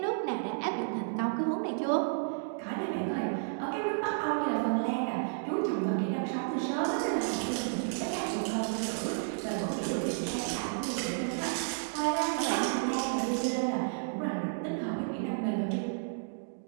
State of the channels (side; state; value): left; silent; digital silence